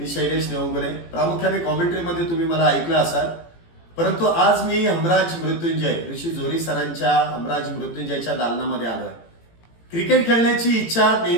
शैलेश नेवंगुले. प्रामुख्याने कॉमेंट्रीमध्ये तुम्ही मला ऐकलं असाल, परंतु आज मी हमराज मृत्युंजय ऋषी जोरी सरांच्या हमराज मृत्युंजयच्या दालनामध्ये आलोय. क्रिकेट खेळण्याची इच्छा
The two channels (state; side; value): late; right; 18 ms